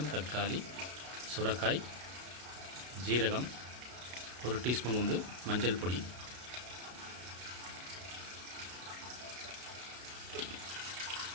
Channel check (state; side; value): late; left; 32 ms